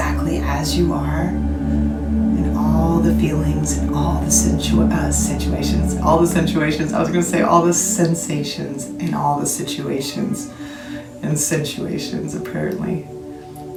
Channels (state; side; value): identical; both; correlation 1.00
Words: as you are, and all the feelings and all the situations, I was going to say all the sensations and all the situations and sensuations, apparently.